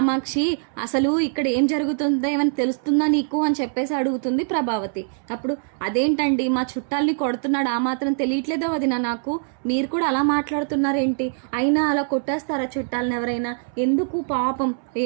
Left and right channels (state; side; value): silent; left; 63 dB below the other